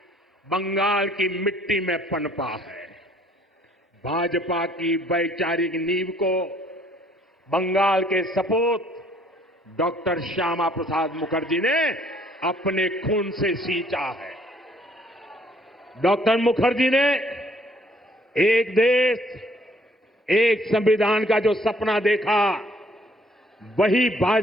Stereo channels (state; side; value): normal; both; correlation 0.62